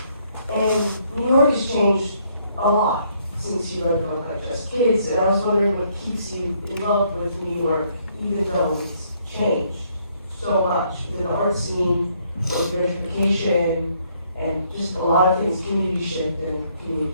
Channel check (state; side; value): inverted; both; correlation -0.69